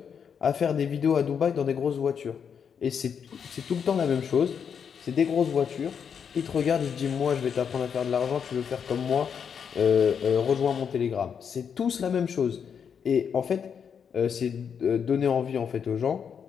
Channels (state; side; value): quieter; right; 7.2 dB